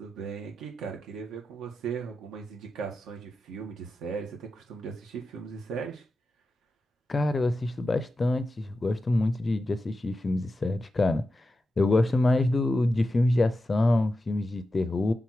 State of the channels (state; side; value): normal; both; correlation 0.91